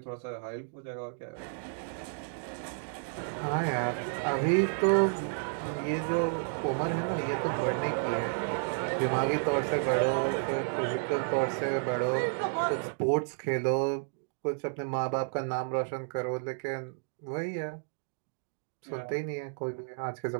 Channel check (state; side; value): silent; left; digital silence